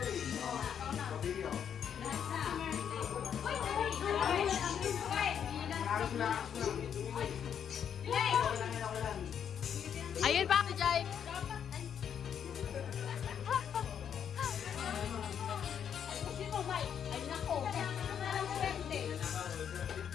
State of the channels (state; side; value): quieter; right; 8.4 dB